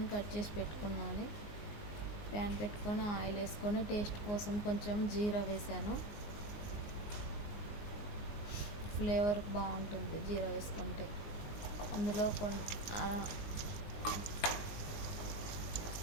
కట్ చేసి పెట్టుకున్నాను. ప్యాన్ పెట్టుకొని ఆయిల్ వేసుకొని టేస్ట్ కోసం కొంచెం జీరా వేసాను. ఫ్లేవర్ బాగుంటుంది జీరా వేసుకుంటే. అందులో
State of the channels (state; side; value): late; right; 19 ms